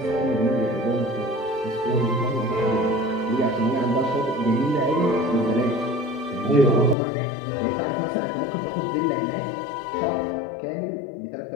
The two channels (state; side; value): drops out; right; at 7.0 s